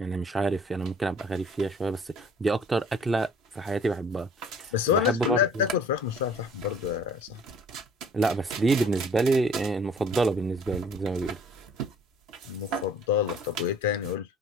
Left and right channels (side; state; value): both; normal; correlation 0.53